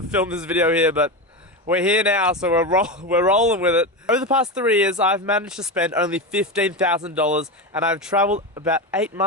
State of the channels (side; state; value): both; normal; correlation 0.17